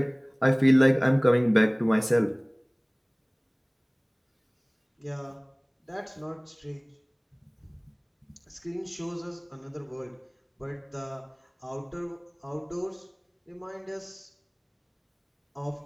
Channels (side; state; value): both; identical; correlation 1.00